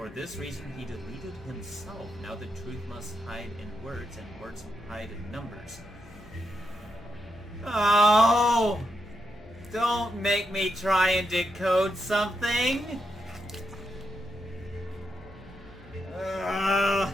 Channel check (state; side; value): noise; left; hum, 22 dB below the sound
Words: this reason he deleted himself. Now the truth must hide in words, and words hide in numbers. Oh! Don't make me try and decode something!